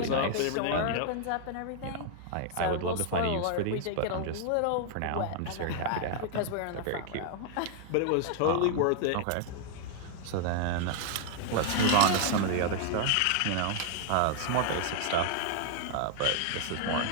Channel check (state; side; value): different; both; correlation 0.00